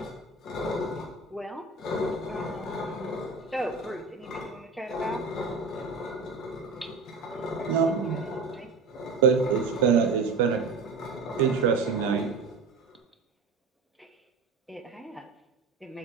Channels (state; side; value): quieter; left; 4.2 dB